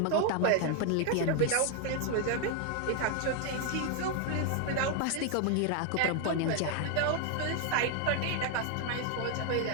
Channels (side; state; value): both; different; correlation 0.01